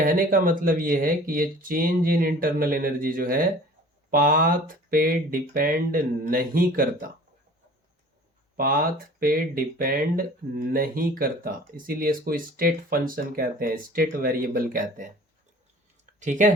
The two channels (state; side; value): normal; both; correlation 0.46